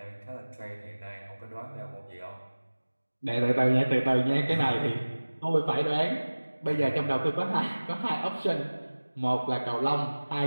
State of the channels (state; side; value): inverted; both; correlation -1.00